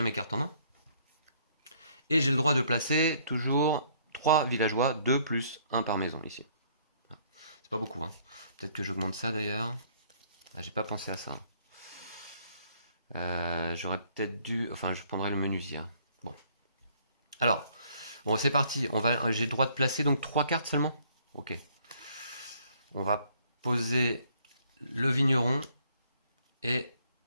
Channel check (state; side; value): inverted; both; correlation -0.63